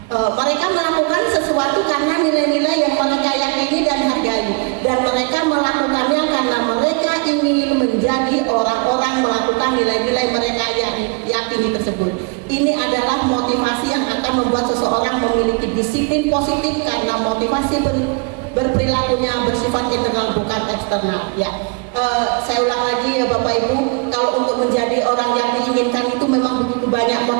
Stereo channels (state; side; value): quieter; left; 32.1 dB